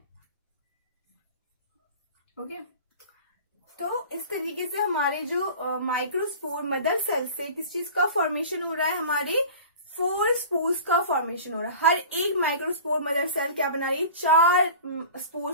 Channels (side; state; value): both; inverted; correlation -0.39